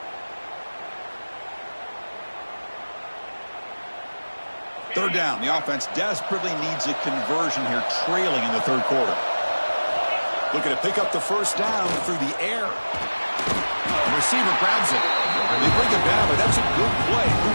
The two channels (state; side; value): inverted; both; correlation -1.00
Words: Third down. The offense desperately needs a conversion here, trailing in the third quarter. Looking to pick up the first down through the air. The receiver grabs it. They bring it down, but that's a good play.